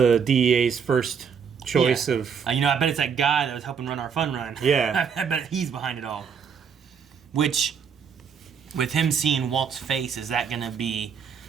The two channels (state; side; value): quieter; left; 6.7 dB